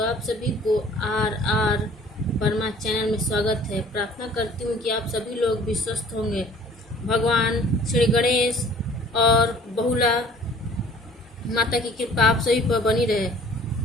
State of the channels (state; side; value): normal; both; correlation 0.52